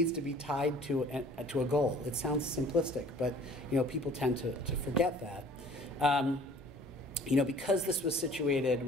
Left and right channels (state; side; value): normal; both; correlation 0.51